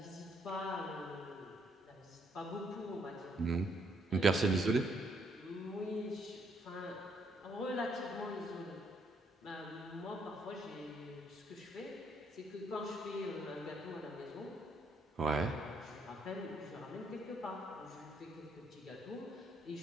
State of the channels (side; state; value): both; normal; correlation 0.71